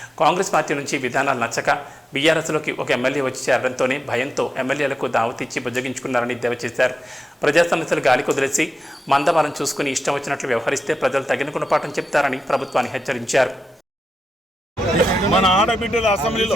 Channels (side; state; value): both; normal; correlation 0.90